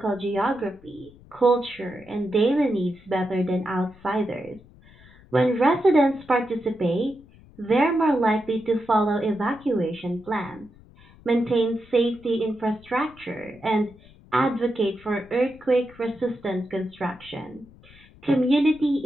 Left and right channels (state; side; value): noise; left; rumble, 25 dB below the sound